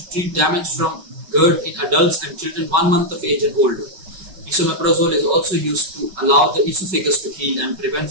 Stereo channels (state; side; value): late; left; 5.3 ms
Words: treat damage from GERD in adults and children 1 month of age and older. Esomeprazole is also used to allow the esophagus to heal and prevent